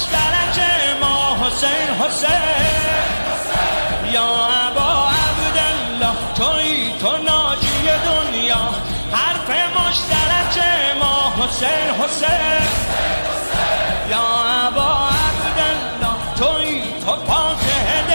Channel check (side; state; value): both; inverted; correlation -1.00